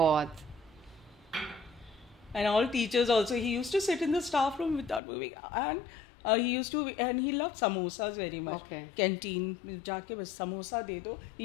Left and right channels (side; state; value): right; drops out; at 5.0 s